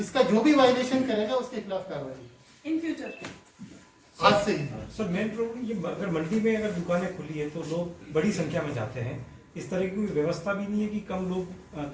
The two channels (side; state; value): both; identical; correlation 1.00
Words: जो भी वायलेशन करेगा उसके खिलाफ कार्रवाई इन फ्यूचर आज से ही। सर मेन प्रॉब्लम ये, अगर मंडी में अगर दुकानें खुली है तो लोग बड़ी संख्या में जाते हैं, इस तरह की व्यवस्था भी नहीं है कि कम लोग